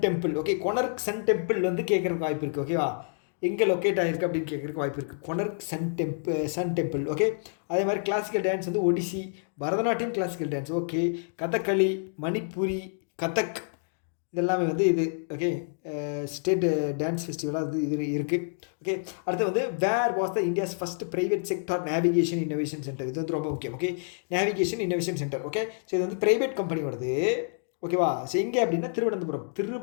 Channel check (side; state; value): right; silent; digital silence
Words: temple. Okay, Konark sun temple வந்து கேட்குறதுக்கு வாய்ப்பு இருக்குது. ஓகேவா, எங்கே லொக்கேட் ஆகிருக்கு அப்படின்னு கேட்குறதுக்கு வாய்ப்பு இருக்குது. கொனர்க் சன் டெம்பிள். ஓகே, அதே மாதிரி கிளாசிக்கல் டான்ஸ் வந்து Odissi, Bharatanatyam classical dance. Okay, Kathakali, Manipuri, Kathak, இதெல்லாமே வந்து இது. ஓகே, ஸ்டேட் டான்ஸ் ஃபெஸ்டிவலாக இது இருக்குது. ஓகே, அடுத்து வந்து where was the India's first private sector navigation innovation centre. இது வந்து ரொம்ப முக்கியம். Okay, navigation innovation centre. Okay, so இது வந்து ப்ரைவேட் கம்பெனி வருது. ஓகேவா, ஸோ எங்கே அப்படின்னா